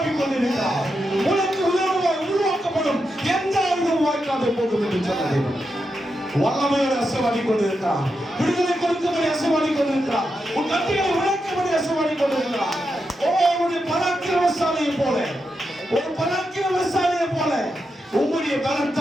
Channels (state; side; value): normal; both; correlation 0.86